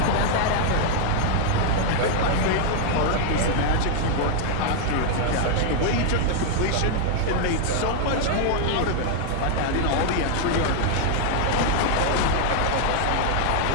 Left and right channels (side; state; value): both; different; correlation 0.00